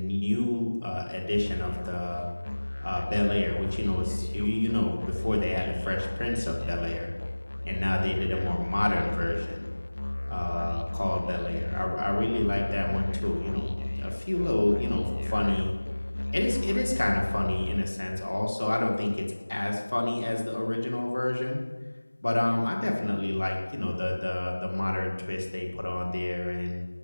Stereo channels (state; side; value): inverted; both; correlation -1.00